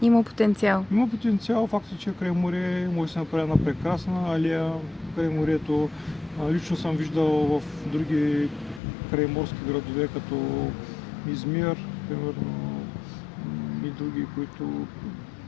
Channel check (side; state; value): right; drops out; at 8.8 s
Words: Има потенциал. Има потенциал. Факт е, че край море може да се направи една прекрасна алея край морето. Лично съм виждал в други крайморски градове, като Измир, примерно, и други, които